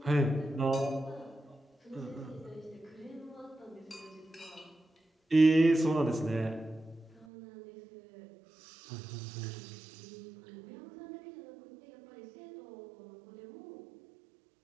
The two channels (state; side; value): drops out; left; at 7.2 s